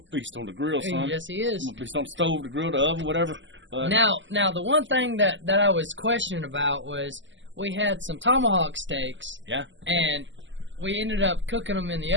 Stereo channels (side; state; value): left; late; 0.54 ms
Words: beast on the grill, son. Yes, he is. I'm a beast on the stove, the grill, the oven, whatever. Now, the one thing that I was questioning about was, we had some tomahawk steaks. Yeah. And we ended up cooking them in the